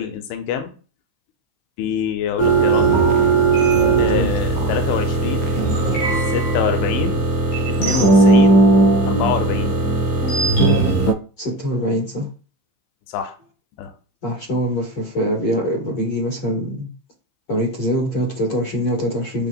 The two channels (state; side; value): late; right; 15 ms